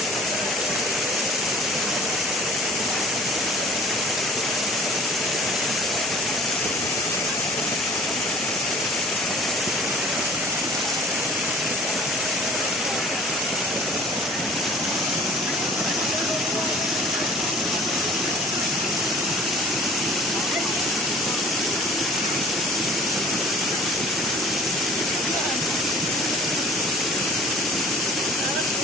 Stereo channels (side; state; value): both; normal; correlation 0.47